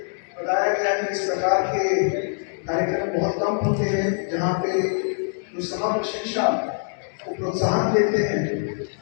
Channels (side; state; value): right; silent; digital silence